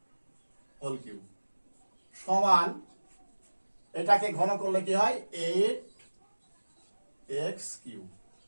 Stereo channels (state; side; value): inverted; both; correlation -1.00